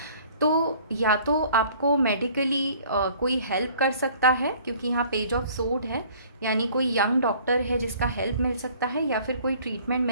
तो या तो आपको मेडिकली कोई हेल्प कर सकता है क्योंकि यहाँ पेज ऑफ सोर्ड है, यानी कोई यंग डॉक्टर है जिसका हेल्प मिल सकता है या फिर कोई ट्रीटमेंट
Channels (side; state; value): both; inverted; correlation -0.54